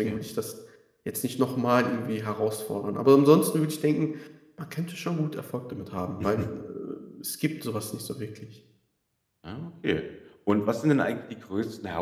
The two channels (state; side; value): identical; both; correlation 1.00